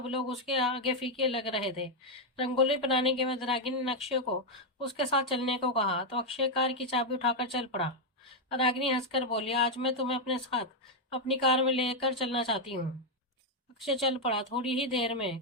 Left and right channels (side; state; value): both; normal; correlation 0.01